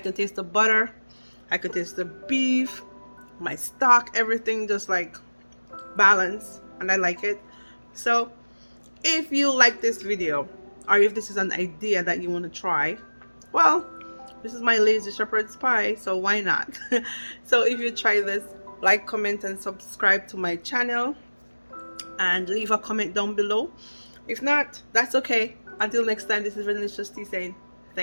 taste the butter, I can taste the beef, my stock, everything just like balanced, and I like it. So if you like this video, or if this is an idea that you want to try, well, this is my lazy shepherd's pie, so why not? So if you try this, like, comment, and subscribe to my channel, and leave a comment down below. If not, that's okay. Until next time, this is Venilicious Tea saying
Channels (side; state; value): both; inverted; correlation -1.00